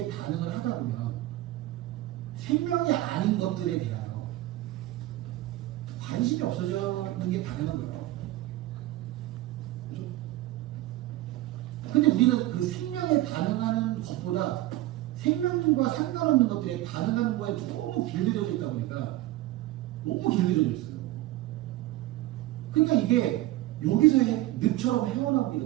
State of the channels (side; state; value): left; quieter; 16.3 dB